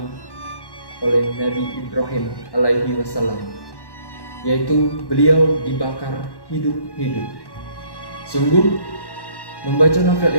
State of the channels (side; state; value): right; late; 1.1 ms